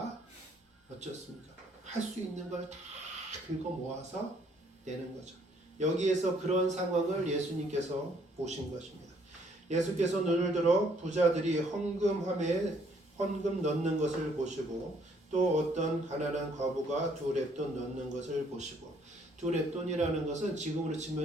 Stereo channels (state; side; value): normal; both; correlation 0.65